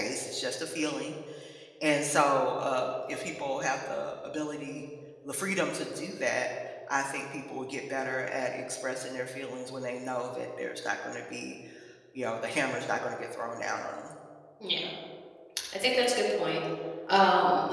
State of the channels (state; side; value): identical; both; correlation 1.00